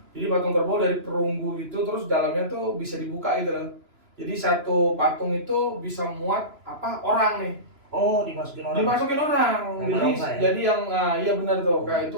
Jadi patung kerbau dari perunggu itu terus dalamnya tuh bisa dibuka gitu loh. Jadi satu patung itu bisa muat orang nih. Oh, dimasukin orang. Dimasukin orang. Jadi yang iya benar tuh. Kayak itu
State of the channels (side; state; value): left; late; 3.0 ms